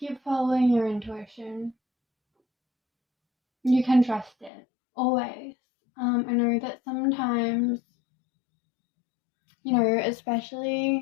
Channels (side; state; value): right; drops out; at 4.5 s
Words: following your intuition. You can trust it. Always. I know that sometimes, you know,